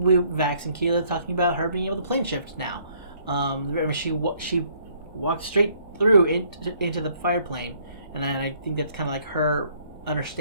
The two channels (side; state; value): both; inverted; correlation -0.64